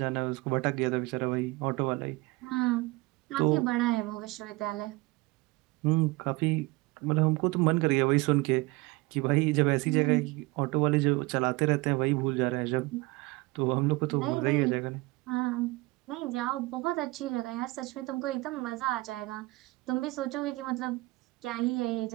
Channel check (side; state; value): left; quieter; 22.4 dB